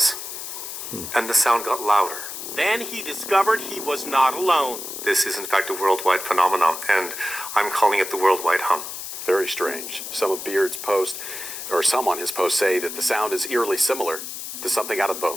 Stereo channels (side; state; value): left; noise; hiss, 8 dB below the sound